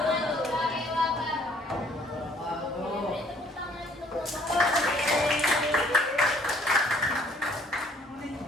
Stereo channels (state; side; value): normal; both; correlation 0.60